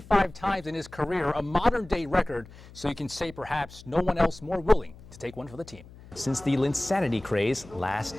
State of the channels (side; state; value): left; noise; hum, 20 dB below the sound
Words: times in his career, a modern-day record, so you can say perhaps no one else more willing to take one for the team since the Linsanity craze last